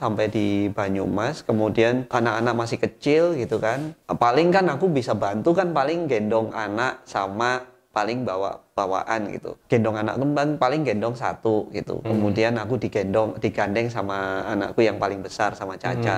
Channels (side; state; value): both; identical; correlation 1.00